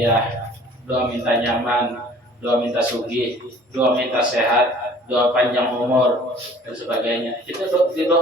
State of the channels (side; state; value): both; normal; correlation 0.51